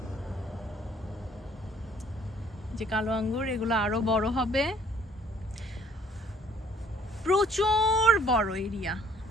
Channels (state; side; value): normal; both; correlation 0.60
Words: যে কালো আঙ্গুর, এগুলো আরো বড় হবে। প্রচুর বড় এরিয়া,